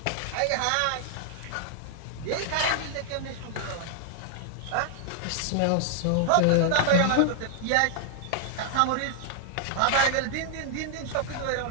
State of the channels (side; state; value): both; different; correlation 0.00